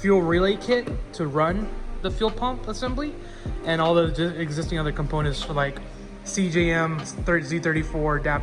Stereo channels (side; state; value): both; identical; correlation 1.00